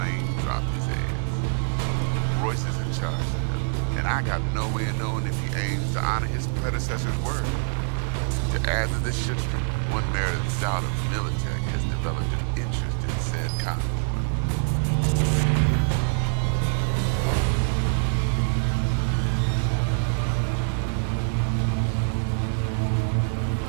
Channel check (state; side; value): silent; left; digital silence